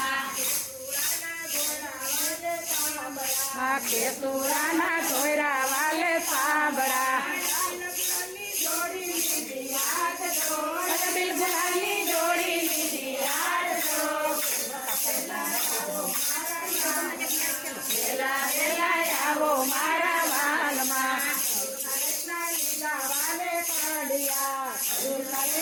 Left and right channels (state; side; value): identical; both; correlation 1.00